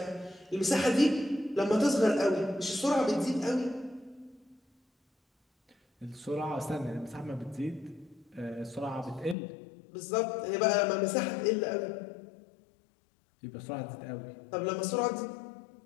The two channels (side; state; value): right; drops out; at 9.3 s